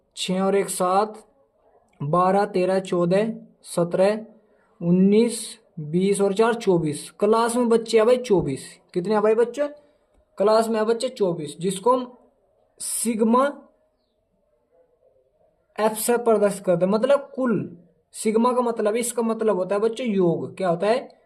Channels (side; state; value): both; identical; correlation 1.00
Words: 6 और 1 7, 12 13 14 17 19 20 और 4 24। क्लास में बच्चे हैं भाई 24। कितने हैं भाई बच्चे क्लास में है बच्चे 24, जिसको हम सिग्मा एफ से प्रदर्शित करते हैं, मतलब कुल। सिग्मा का मतलब है, इसका मतलब होता है बच्चों योग। क्या होता है?